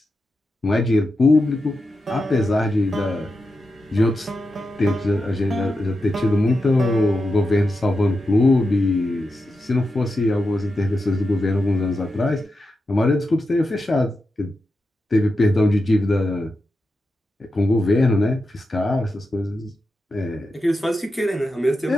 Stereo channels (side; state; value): both; normal; correlation 0.89